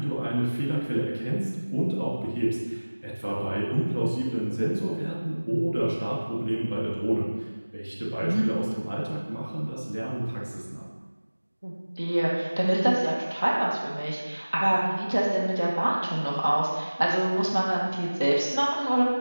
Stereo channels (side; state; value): both; inverted; correlation -1.00